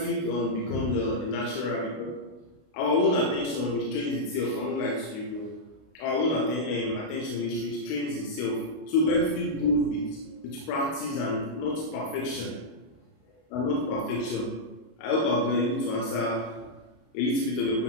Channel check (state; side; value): late; right; 32 ms